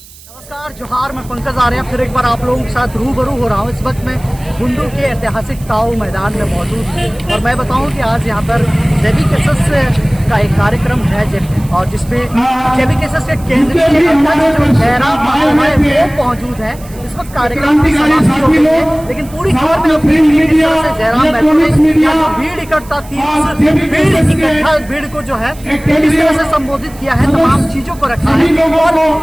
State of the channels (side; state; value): right; noise; hiss, 22 dB below the sound